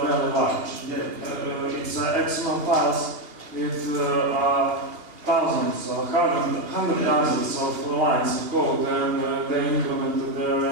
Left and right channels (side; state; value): left; late; 2.6 ms